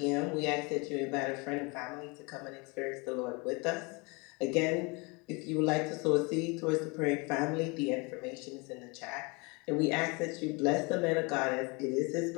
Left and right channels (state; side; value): quieter; right; 28.6 dB